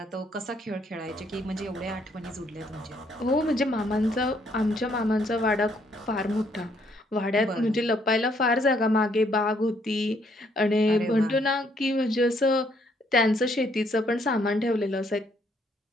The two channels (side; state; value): both; normal; correlation 0.69